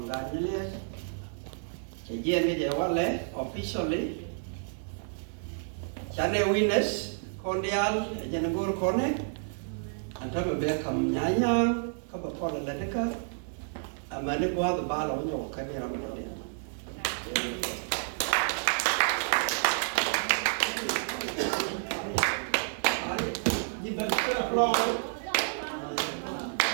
gan Nyɛli chỉ riêng cái gì vậy lẽ officially chane witness cordial janagor kone anta mbe kam Nyang ka ba kola la deka amane ko ha ba lo nyo ka ni ra ba de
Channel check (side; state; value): left; silent; digital silence